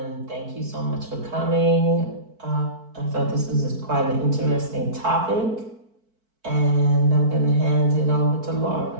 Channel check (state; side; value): late; left; 4.5 ms